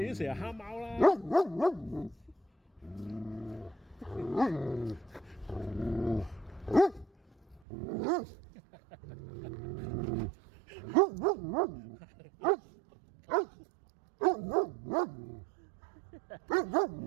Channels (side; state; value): left; drops out; at 7.6 s